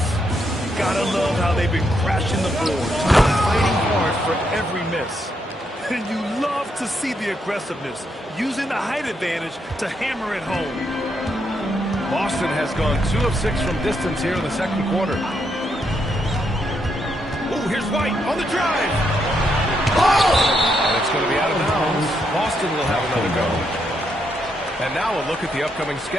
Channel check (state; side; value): normal; both; correlation 0.78